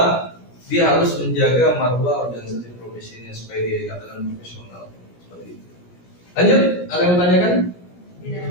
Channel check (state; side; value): late; right; 17 ms